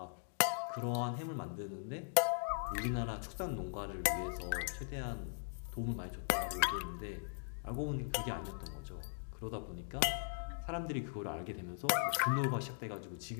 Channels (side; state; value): right; silent; digital silence